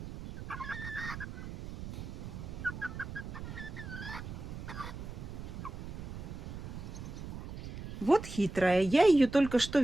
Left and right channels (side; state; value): right; noise; rumble, 9 dB below the sound